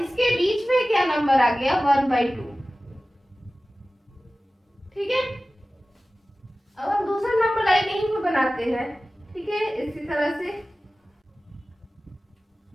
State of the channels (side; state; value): both; normal; correlation 0.96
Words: बीच में क्या नंबर आ गया, 1/2। ठीक है, अब हम दूसरा नंबर लाइन यहीं पे बनाते हैं। ठीक है, इसी तरह से